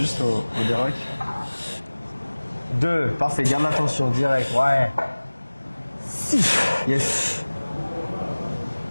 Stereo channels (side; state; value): both; inverted; correlation -1.00